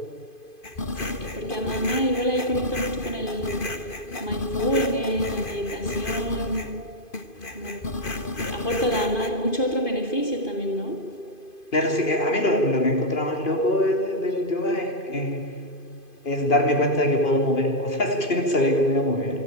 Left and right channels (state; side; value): late; right; 2.5 ms